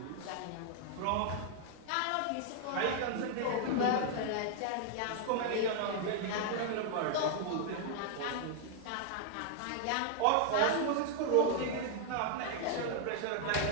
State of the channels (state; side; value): different; both; correlation 0.00